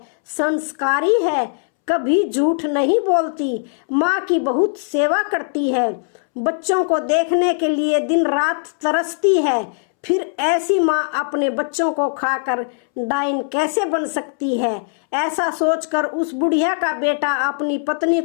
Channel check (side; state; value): right; silent; 66 dB below the other